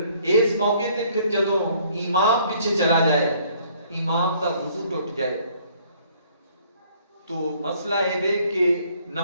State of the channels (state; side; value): inverted; both; correlation -0.61